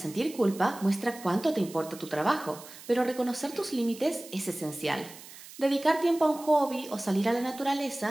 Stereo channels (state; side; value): noise; right; hiss, 17 dB below the sound